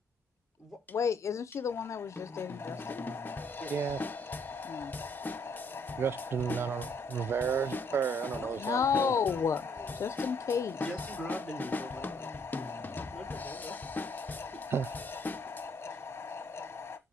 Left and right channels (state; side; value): normal; both; correlation 0.67